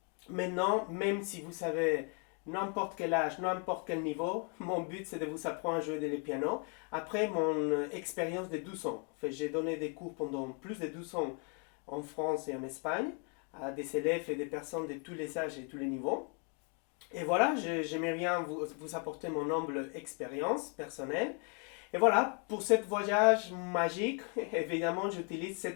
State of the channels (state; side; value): quieter; right; 38.2 dB